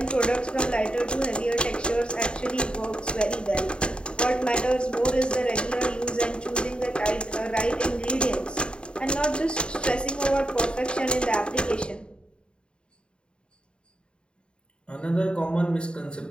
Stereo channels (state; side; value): late; right; 0.052 ms